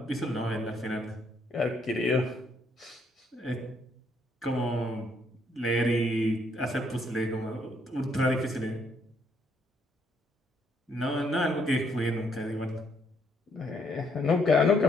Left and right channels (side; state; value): both; normal; correlation 0.71